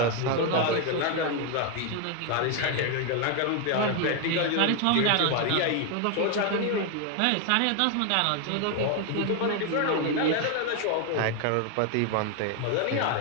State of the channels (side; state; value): both; different; correlation 0.01